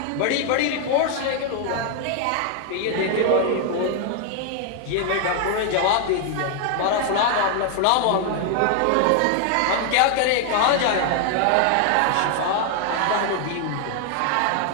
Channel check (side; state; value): both; different; correlation 0.00